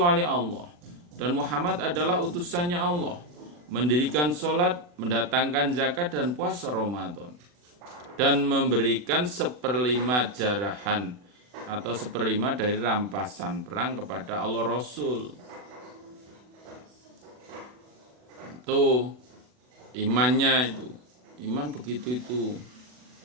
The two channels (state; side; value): late; left; 40 ms